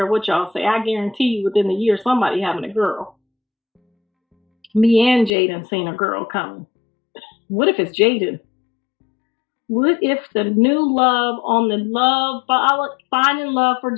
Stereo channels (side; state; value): right; drops out; at 5.3 s